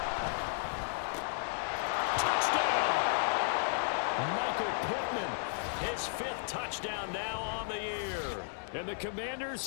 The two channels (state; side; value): silent; right; digital silence